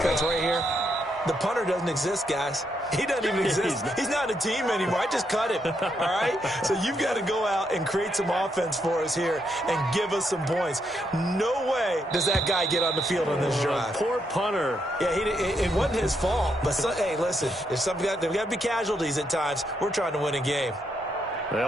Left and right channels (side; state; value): both; normal; correlation 0.78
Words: right here? The punter doesn't exist, guys. He doesn't even exist. He's not a team anymore. I just cut him, all right? So you've got to go out and create some offense for us here and give us some points. No way does that guy get on the field on this drive. Poor punter. Yeah, it wasn't his fault. But, hey, listen, there's got to be casualties at times. We're trying to win a game.